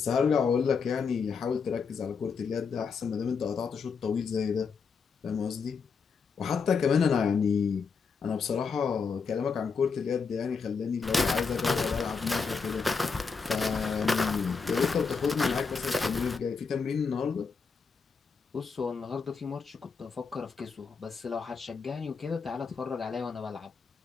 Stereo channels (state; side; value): quieter; right; 5.4 dB